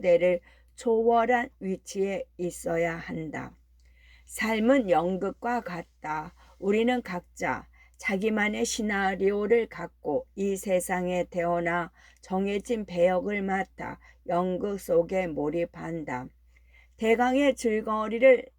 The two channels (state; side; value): identical; both; correlation 1.00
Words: 초월한 위치에 있어야 한다. 삶은 연극과 같다. 우리는 각자 자기만의 시나리오를 갖고 이 세상에 태어나 정해진 배역을 맡아 연극 속에 몰입한다. 대강의